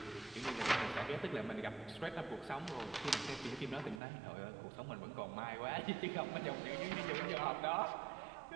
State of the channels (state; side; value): drops out; left; at 4.0 s